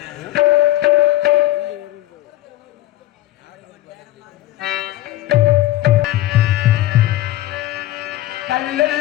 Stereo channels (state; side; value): quieter; right; 15.1 dB